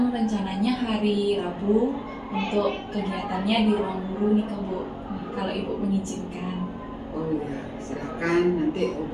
rencananya hari Rabu untuk kegiatannya di ruang guru nih, Bu, kalau ibu mengizinkan. Oh iya, silakan nanti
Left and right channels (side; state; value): both; identical; correlation 1.00